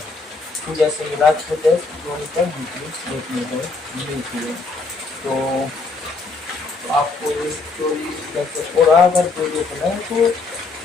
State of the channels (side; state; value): right; quieter; 3.9 dB